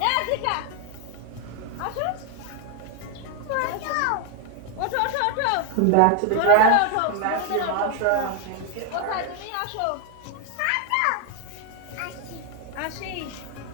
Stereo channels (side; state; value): both; different; correlation 0.01